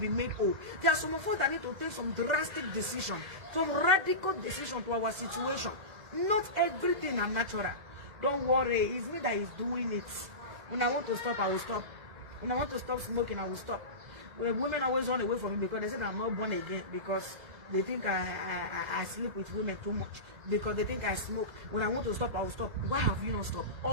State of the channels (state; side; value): late; left; 2.0 ms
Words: made whole. There are some of us that need to take some drastic decision, some radical decision to our situation. Not everything are natural. Don't worry, it's me that is doing it. When I want to stop, I will stop. When I want to stop smoking, I will stop. Women always run away from me because they say I'm not born again, because they think I sleep with women too much, because they think I smoke. When I want to stop, I will stop. Why have you not stopped?